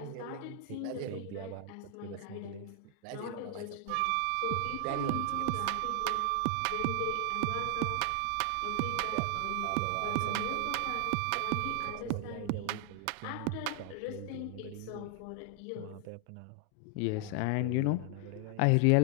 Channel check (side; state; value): both; different; correlation 0.00